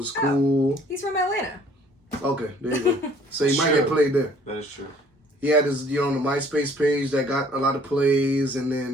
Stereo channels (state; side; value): normal; both; correlation 0.57